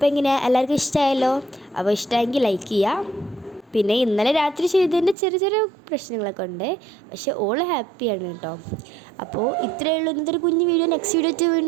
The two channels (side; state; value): left; drops out; at 5.2 s